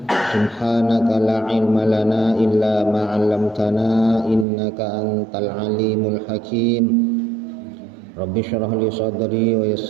Subhanaka la ilma lana illa ma 'allamtana innaka antal alimul hakim. Rabbi syrah li sadri wa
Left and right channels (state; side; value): drops out; left; at 4.5 s